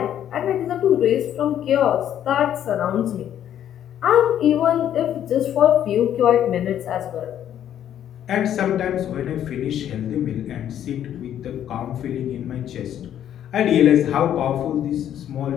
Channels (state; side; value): quieter; right; 10.5 dB